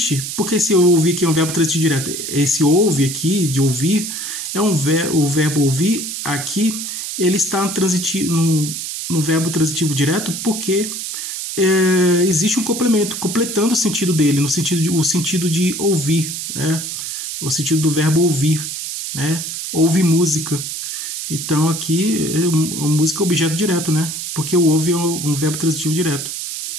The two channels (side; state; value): right; noise; hiss, 5 dB below the sound